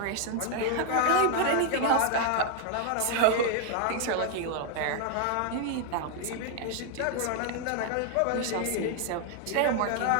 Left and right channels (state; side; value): different; both; correlation 0.00